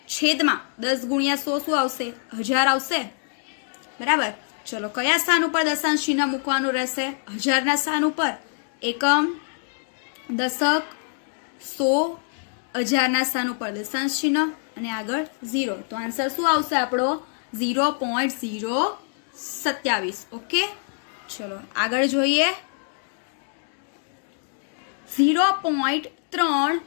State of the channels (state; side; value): silent; right; 62 dB below the other